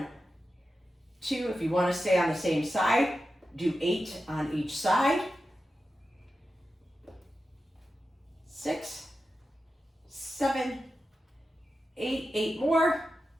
2, if you wanna stay on the same side, do 8 on each side. 6, 7, 8, 8 more.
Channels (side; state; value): both; normal; correlation 0.91